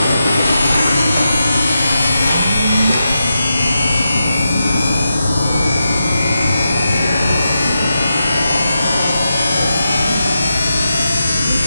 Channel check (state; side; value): inverted; both; correlation -0.88